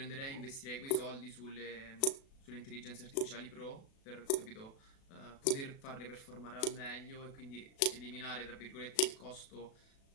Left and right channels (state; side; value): late; right; 36 ms